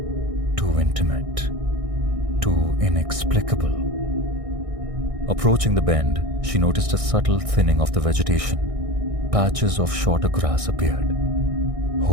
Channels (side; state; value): left; late; 1.6 ms